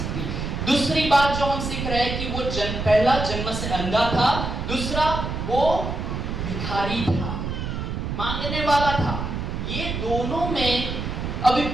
दूसरी बात जो हम सीख रहे हैं कि वो पहला जन्म से अंधा था, दूसरा वो भिखारी था, मांगने वाला था। ये दोनों में अभी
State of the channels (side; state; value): right; noise; rumble, 4 dB below the sound